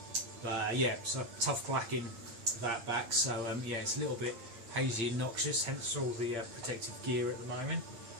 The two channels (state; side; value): late; left; 8.7 ms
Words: But yeah, so tough blacking that back, so yeah, it's a little bit hazy and noxious, hence all the protective gear at the moment.